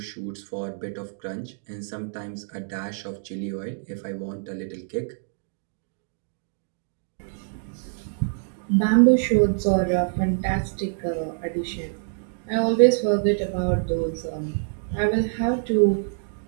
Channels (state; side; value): silent; left; digital silence